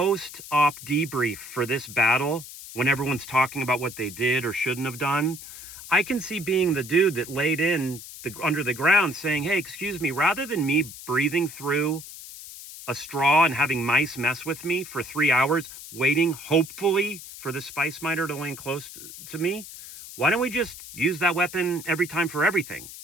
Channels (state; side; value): noise; left; hiss, 14 dB below the sound